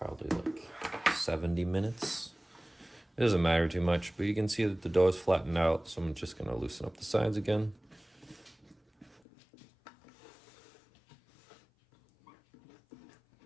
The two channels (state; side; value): drops out; right; at 9.2 s